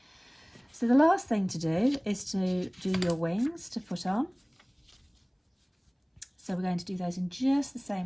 So the last thing to do is to do your wings to put on. So we're going to do those in just the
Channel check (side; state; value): both; identical; correlation 1.00